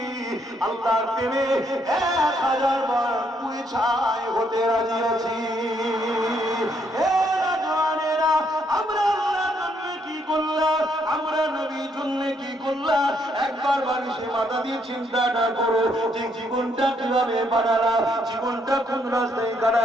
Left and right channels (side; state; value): both; normal; correlation 0.72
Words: আল্লাহর প্রেমে 1000 বার পুড়ে ছাই হতে রাজি আছি। আমরা আল্লাহর জন্য কি করলাম, আমরা নবীর জন্য কি করলাম, একবার বালিশে মাথা দিয়ে চিন্তাটা করো যে জীবনটা কিভাবে বানালাম, জীবনটা কোন রাস্তায়